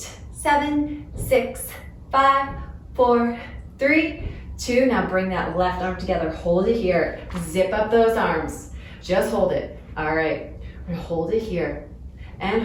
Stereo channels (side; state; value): both; identical; correlation 1.00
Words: 7, 6, 5, 4, 3, 2. Now bring that left arm together. Hold it here. Zip up those arms. Just hold it. All right. We're gonna hold it here and